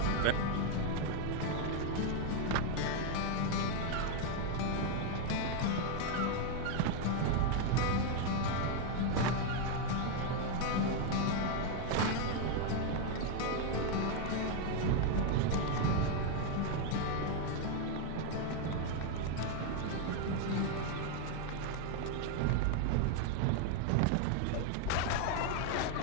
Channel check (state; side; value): different; both; correlation 0.01